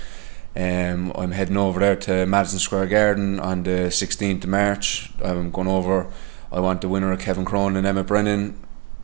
I'm heading over there to Madison Square Garden on the 16th of March. I'm going over. I want the winner of Kevin Cronin and Emmett Brennan,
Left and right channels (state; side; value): quieter; left; 26.3 dB